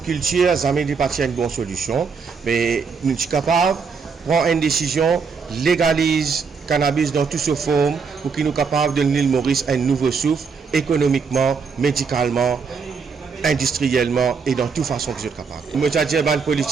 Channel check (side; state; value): left; quieter; 5.4 dB